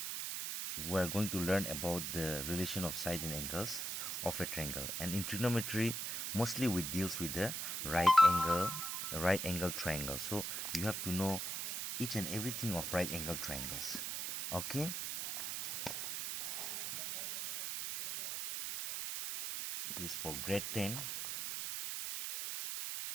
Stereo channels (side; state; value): right; noise; hiss, 3 dB below the sound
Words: we are going to learn about the relation of side and angles of a triangle. And in trigonometry, mostly we deals with the right angle triangle. So you have to know each and everything of right angle triangles. Okay, this is for grade 10.